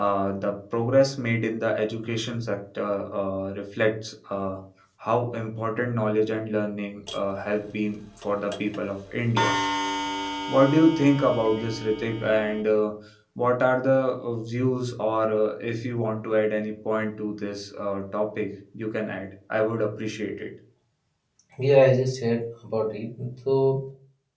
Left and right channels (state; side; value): identical; both; correlation 1.00